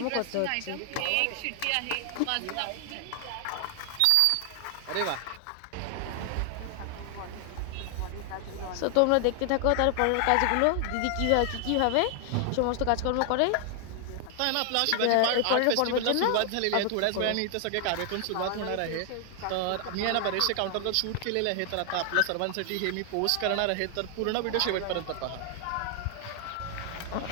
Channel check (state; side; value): different; both; correlation 0.00